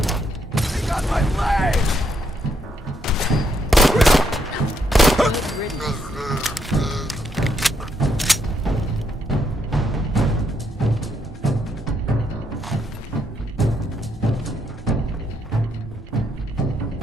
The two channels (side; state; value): both; normal; correlation 0.75